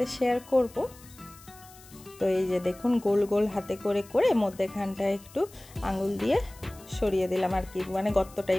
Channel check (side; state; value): left; noise; hiss, 22 dB below the sound